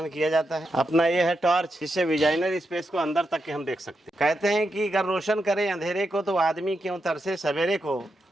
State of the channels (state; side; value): normal; both; correlation 0.85